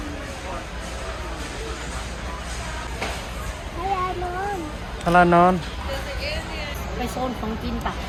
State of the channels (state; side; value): identical; both; correlation 1.00